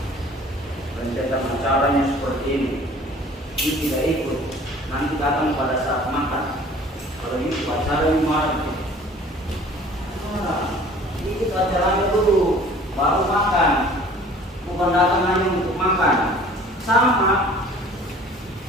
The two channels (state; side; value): normal; both; correlation 0.49